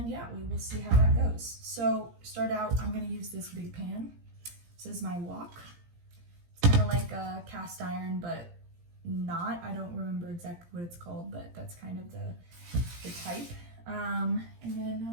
yeah, we will see how that goes. So start out, I'm gonna use this big pan. This is my wok. It's kind of like a cast iron, but not. I don't remember exactly what it's called, but that's kind of the type. And then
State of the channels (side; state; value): left; late; 17 ms